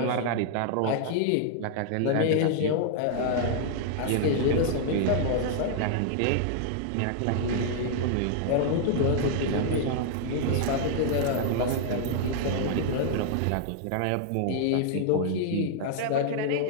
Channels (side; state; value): both; different; correlation -0.01